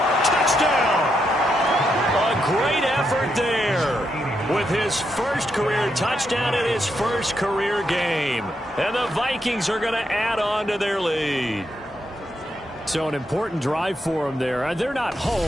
Touchdown. A great effort there with his first career touchdown in his first career game. And the Vikings are going to add on to their lead. So an important drive for them there. They're not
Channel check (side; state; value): both; normal; correlation 0.81